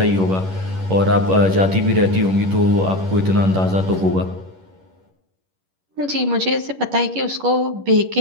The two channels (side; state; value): left; late; 11 ms